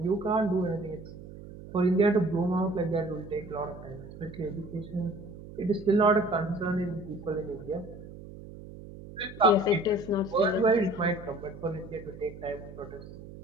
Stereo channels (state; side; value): noise; right; hum, 15 dB below the sound